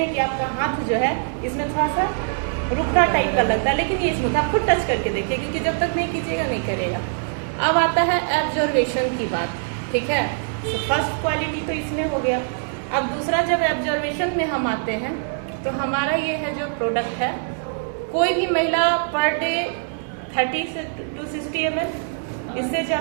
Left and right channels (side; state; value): left; silent; 63 dB below the other